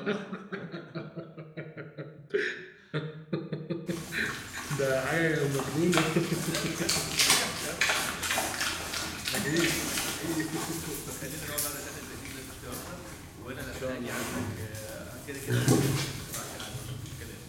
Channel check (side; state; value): both; identical; correlation 1.00